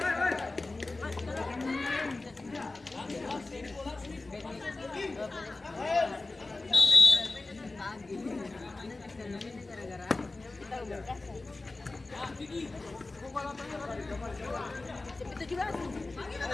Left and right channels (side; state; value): right; quieter; 3.3 dB